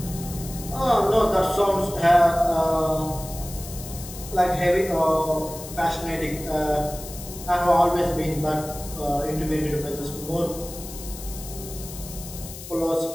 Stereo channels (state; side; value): noise; left; hiss, 13 dB below the sound